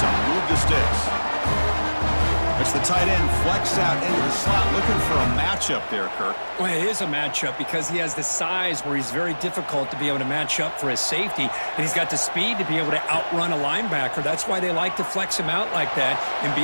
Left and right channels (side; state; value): both; inverted; correlation -1.00